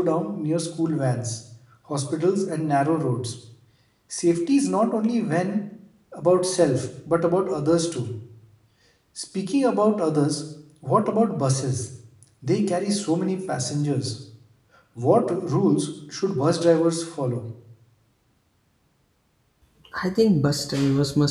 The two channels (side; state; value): both; identical; correlation 1.00